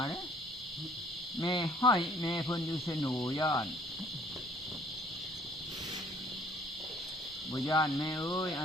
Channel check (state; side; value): normal; both; correlation 0.58